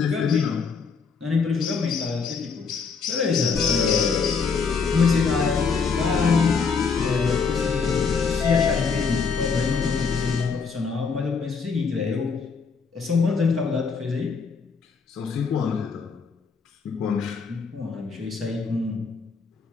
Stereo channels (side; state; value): right; quieter; 5.3 dB